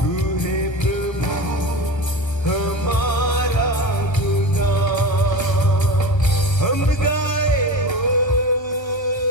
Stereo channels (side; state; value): right; late; 1.5 ms